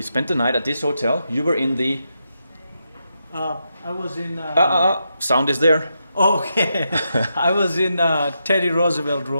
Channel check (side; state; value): both; inverted; correlation -0.84